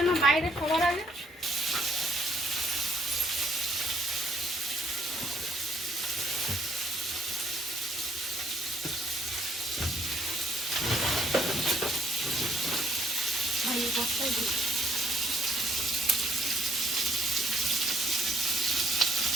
না বাইরে সবার আগে।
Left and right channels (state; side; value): normal; both; correlation 0.67